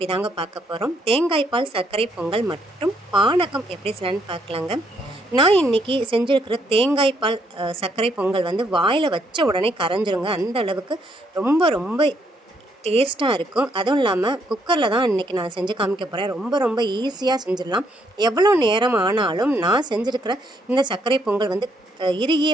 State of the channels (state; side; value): normal; both; correlation 0.72